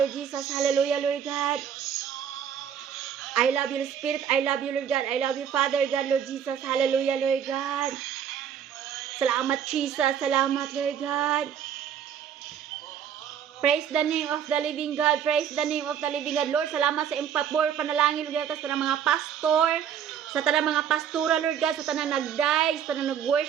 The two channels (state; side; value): quieter; left; 8.6 dB